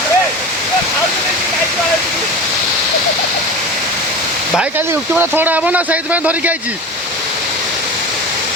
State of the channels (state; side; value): normal; both; correlation 0.31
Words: भाई खाली यूट्यूब थोड़ा हम ना सही धरिक आई